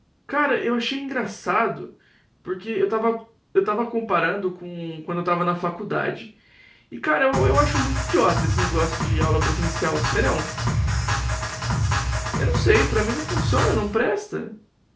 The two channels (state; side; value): identical; both; correlation 1.00